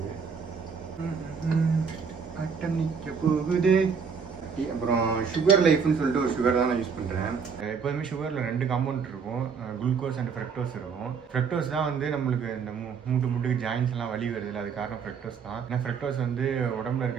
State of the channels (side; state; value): left; quieter; 6.0 dB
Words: அட்டம் நிற்க போகுது. அப்புறம் சுகர் லைஃப்னு சொல்லிட்டு ஒரு சுகர் தான் நான் யூஸ் பண்ணுறேன். எப்போதுமே சுகரில் 2 காம்பவுண்ட் இருக்கும், குளுக்கோஸ் அண்ட் ஃப்ரக்டோஸ் இருக்கும். ஃப்ரக்டோஸ் தான் வந்து நம்மளுக்கு இந்த மூட்டுக்கு ஜாயின்ஸ் எல்லாம் வலி வருது, அது காரணம் ஃப்ரக்டோஸ் தான். ஏன்னா ஃப்ரக்டோஸ் வந்து உடம்புல